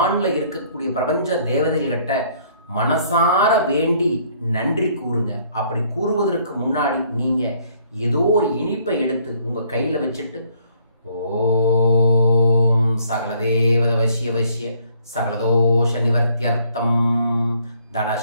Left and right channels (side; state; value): both; inverted; correlation -0.64